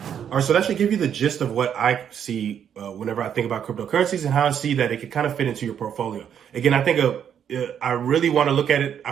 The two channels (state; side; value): quieter; left; 8.7 dB